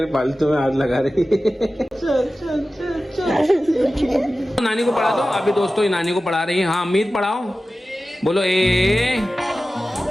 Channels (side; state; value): both; normal; correlation 0.95